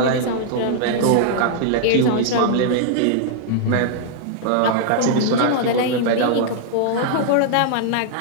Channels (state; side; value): different; both; correlation -0.01